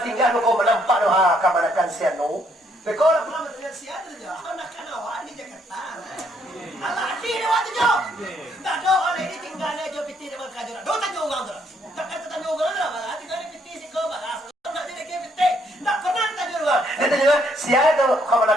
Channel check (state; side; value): normal; both; correlation 0.70